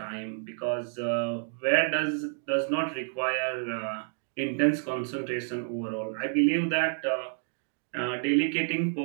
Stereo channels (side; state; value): left; silent; 58 dB below the other